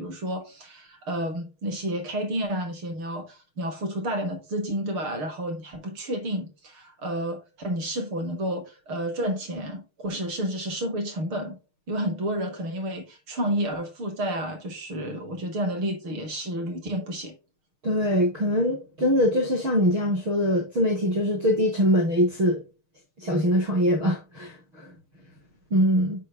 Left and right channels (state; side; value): late; left; 6.5 ms